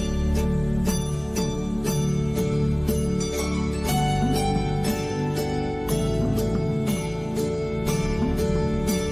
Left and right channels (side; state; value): left; noise; hum, 23 dB below the sound